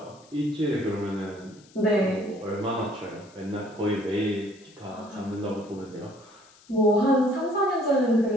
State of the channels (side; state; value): left; noise; hiss, 27 dB below the sound